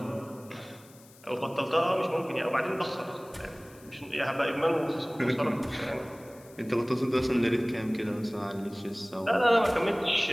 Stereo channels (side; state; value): left; noise; hiss, 24 dB below the sound